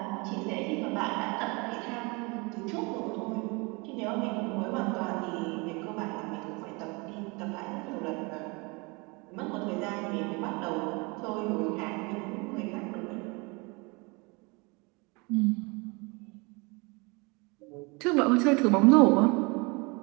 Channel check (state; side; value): quieter; left; 28.2 dB